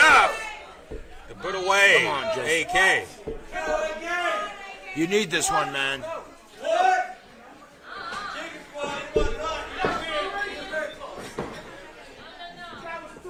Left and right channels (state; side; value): identical; both; correlation 1.00